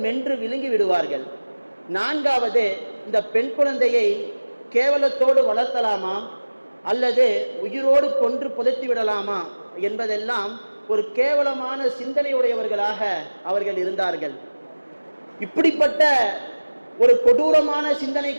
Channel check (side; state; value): both; inverted; correlation -1.00